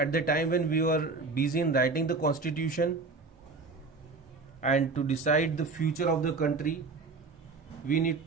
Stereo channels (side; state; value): left; quieter; 4.0 dB